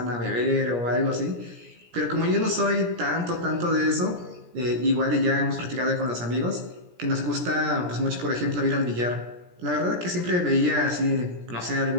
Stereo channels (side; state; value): left; late; 17 ms